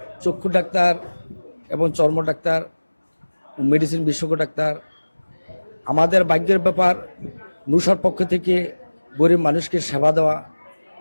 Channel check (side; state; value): both; inverted; correlation -1.00